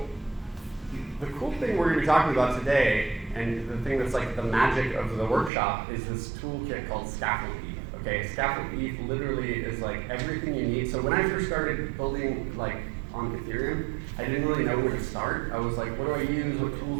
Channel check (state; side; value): drops out; left; at 5.5 s